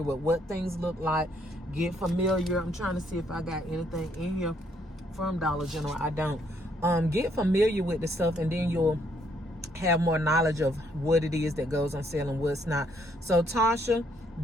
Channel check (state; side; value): normal; both; correlation 0.69